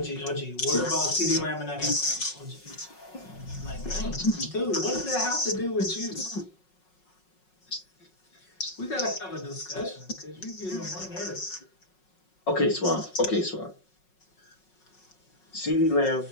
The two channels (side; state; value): right; late; 5.5 ms